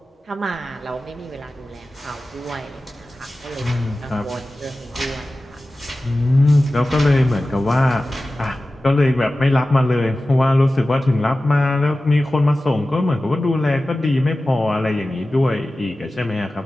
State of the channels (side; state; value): both; normal; correlation 0.95